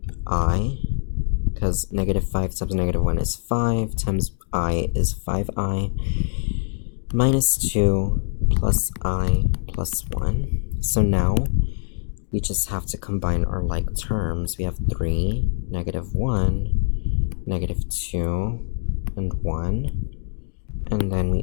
because negative 5 times negative 1 is 5, times I is 5I, minus 2 plus I plus 1. So now we just have to combine our like terms. We have 3, negative 1, negative 2, and 1. And then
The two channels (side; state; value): right; silent; digital silence